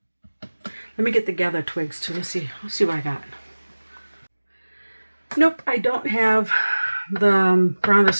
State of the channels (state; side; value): inverted; both; correlation -1.00